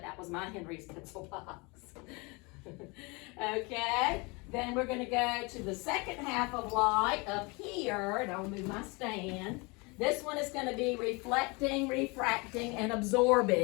that was my Henry's pencil box. Okay, then we're going to go to the second half of light up here, and I'll move my stand. This one is going to be reflecting, refracting, and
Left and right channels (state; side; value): quieter; right; 27.8 dB